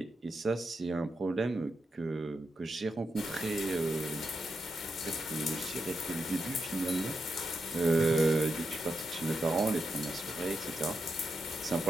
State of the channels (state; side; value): normal; both; correlation 0.86